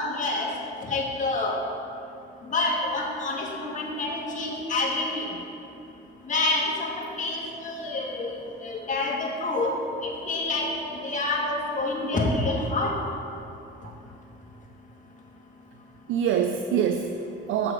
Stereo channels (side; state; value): both; normal; correlation 0.13